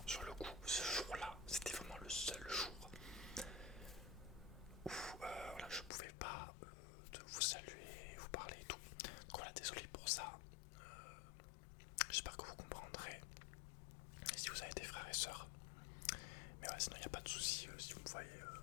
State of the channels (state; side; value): drops out; right; at 5.9 s